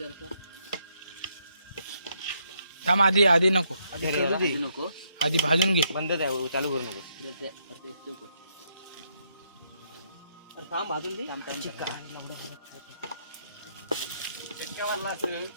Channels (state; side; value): inverted; both; correlation -0.75